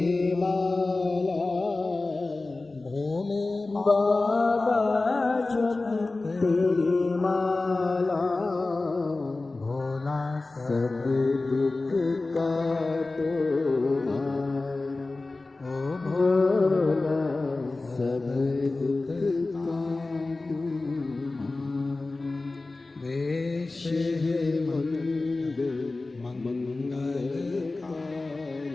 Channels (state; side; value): quieter; right; 3.3 dB